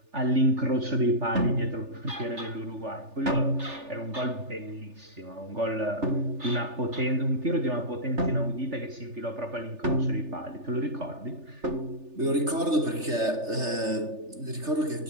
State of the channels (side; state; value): left; late; 3.4 ms